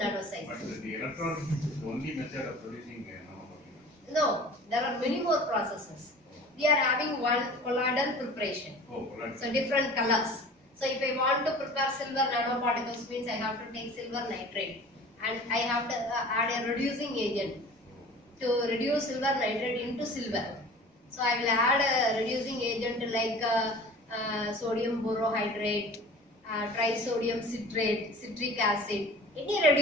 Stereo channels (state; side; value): normal; both; correlation 0.42